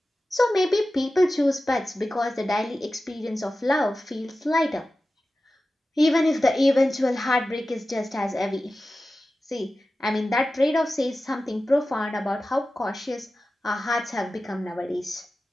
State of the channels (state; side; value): normal; both; correlation 0.94